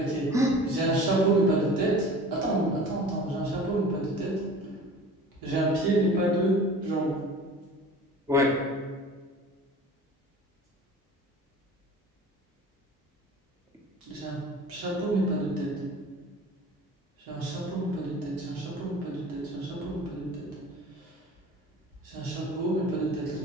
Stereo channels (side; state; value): both; normal; correlation 0.41